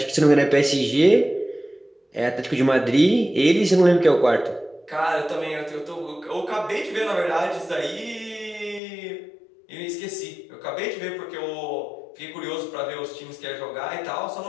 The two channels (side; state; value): right; drops out; at 8.8 s